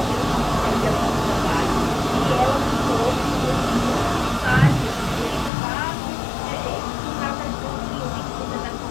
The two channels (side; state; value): right; drops out; at 5.5 s